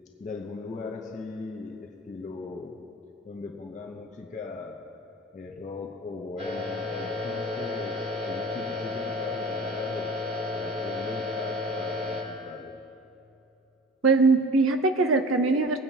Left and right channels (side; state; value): both; normal; correlation 0.40